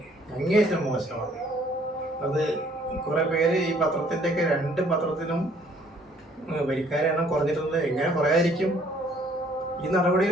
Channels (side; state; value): both; normal; correlation 0.61